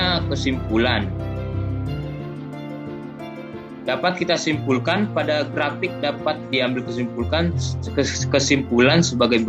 kesimpulan. Dapat kita simpulkan pada grafik dapat diambil kesimpulan sebagai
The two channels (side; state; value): both; identical; correlation 1.00